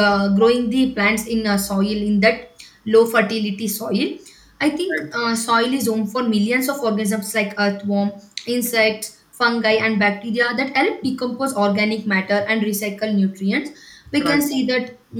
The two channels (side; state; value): both; identical; correlation 1.00